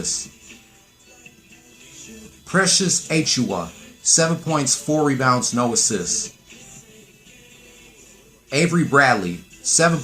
Precious Achiuwa, 7 points, 4 rebounds, no assists. Avery Bradley, 7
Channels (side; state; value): both; identical; correlation 1.00